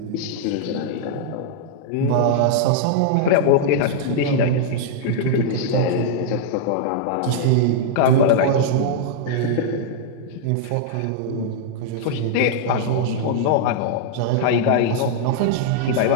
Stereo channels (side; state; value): both; different; correlation -0.01